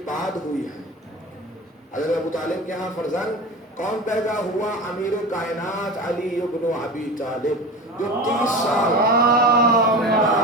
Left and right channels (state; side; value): normal; both; correlation 0.31